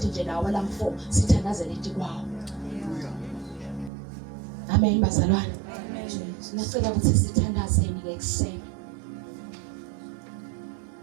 nje lawa lam 4 sithandazele ithi kwawo. Amen bazalwane. Amen. Ngicela ukuthi sithandazeni ke ekseni.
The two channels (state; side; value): drops out; left; at 3.9 s